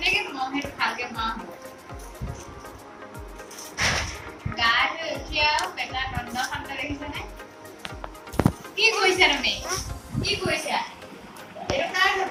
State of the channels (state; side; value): identical; both; correlation 1.00